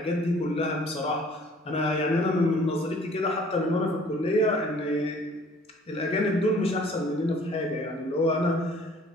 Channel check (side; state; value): both; normal; correlation 0.54